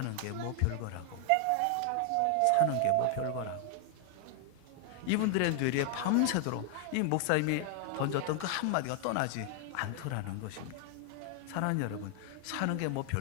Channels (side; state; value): both; different; correlation 0.00